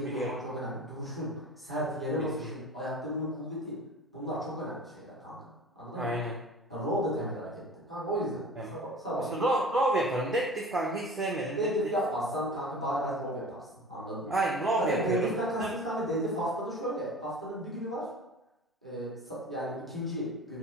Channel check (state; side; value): normal; both; correlation 0.39